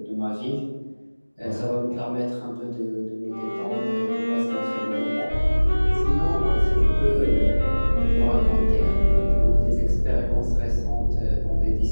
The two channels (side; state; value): both; inverted; correlation -1.00